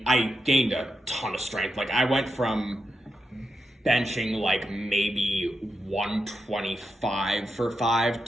gained a ton of strength. I went from benching maybe 125 for 5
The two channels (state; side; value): normal; both; correlation 0.87